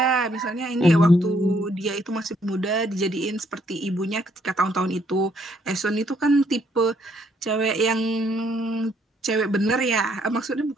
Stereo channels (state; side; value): normal; both; correlation 0.69